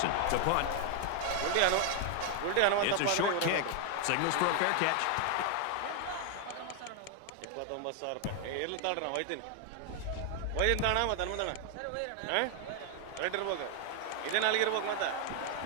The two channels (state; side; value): different; both; correlation 0.00